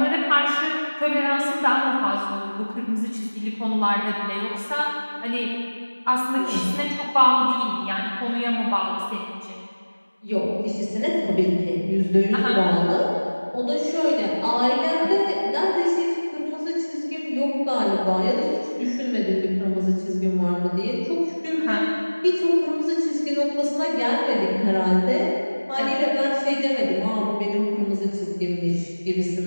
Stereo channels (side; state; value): both; inverted; correlation -1.00